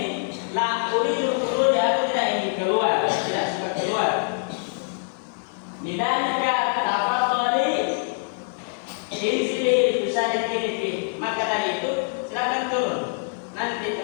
La uridu khuruj, aku tidak ingin keluar, tidak suka keluar. Lidalika tafadhali inzili bisa dikini. Maka tadi itu silakan turun. Nanti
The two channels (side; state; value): right; silent; 62 dB below the other